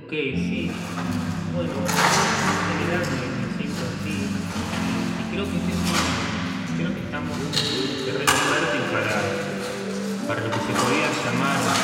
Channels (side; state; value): both; identical; correlation 1.00